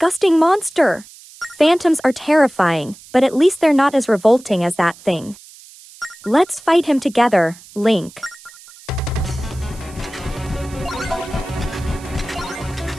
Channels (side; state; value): right; noise; hiss, 21 dB below the sound